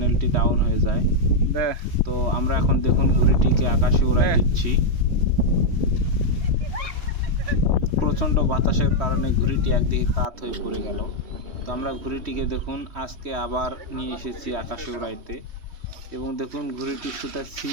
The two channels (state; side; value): late; left; 3.1 ms